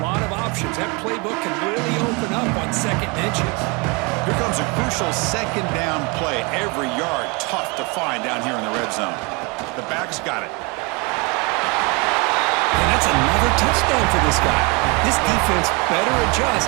lot of options. That playbook can really open up on second and inches. Here comes a crucial second down play. Every yard tough to find down here in the red zone. The back's got it. And that's another touchdown for this guy. This defense better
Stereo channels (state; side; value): quieter; left; 29.5 dB